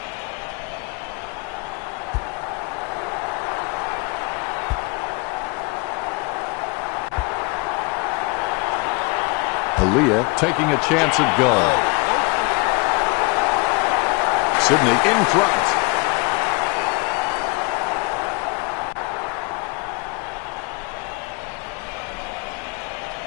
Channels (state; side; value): quieter; right; 27.4 dB